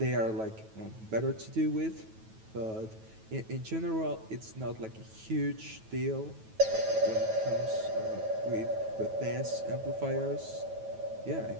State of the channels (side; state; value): left; late; 9.2 ms